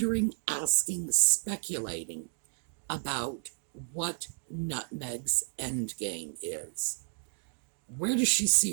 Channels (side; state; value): left; silent; 56 dB below the other